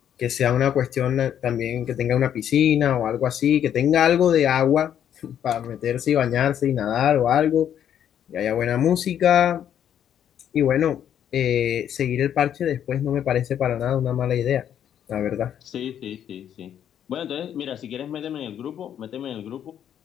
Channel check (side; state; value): right; quieter; 9.7 dB